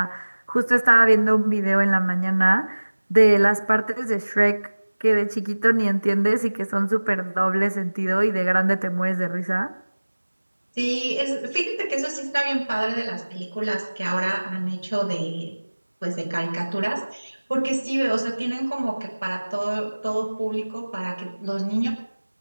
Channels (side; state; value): both; inverted; correlation -1.00